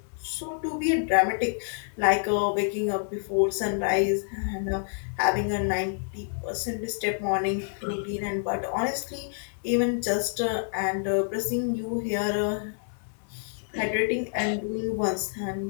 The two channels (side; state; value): right; silent; digital silence